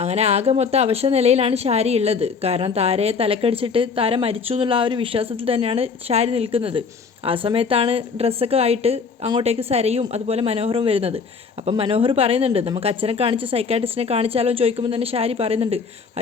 അങ്ങനെ ആകെ മൊത്തം അവശ നിലയിലാണ് ഷാരി ഉള്ളത്. കാരണം താരയെ തലക്കടിച്ചിട്ട് താര മരിച്ചു എന്നുള്ള ആ ഒരു വിശ്വാസത്തിൽ തന്നെയാണ് ഷാരി നിൽക്കുന്നത്. ആ സമയത്താണ് ഡ്രസ്സൊക്കെ ആയിട്ട് അങ്ങോട്ടേക്ക് സരയും അതുപോലെ മനോഹറും വരുന്നത്. അപ്പം മനോഹർ പറയുന്നുണ്ട്, നമുക്ക് അച്ഛനെ കാണിച്ച് സൈക്കാട്രിസ്റ്റിനെ കാണിച്ചാലോ ചോദിക്കുമ്പോൾ തന്നെ ഷാരി പറയുന്നുണ്ട്,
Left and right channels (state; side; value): quieter; right; 5.4 dB